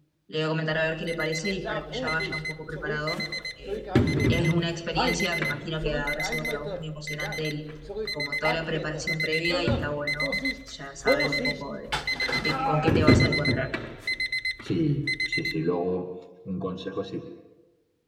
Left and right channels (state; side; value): identical; both; correlation 1.00